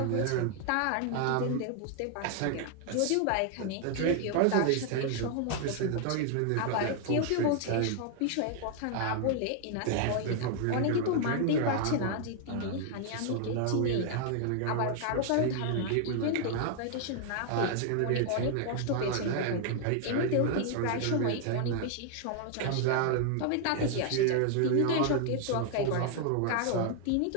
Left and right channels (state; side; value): different; both; correlation 0.00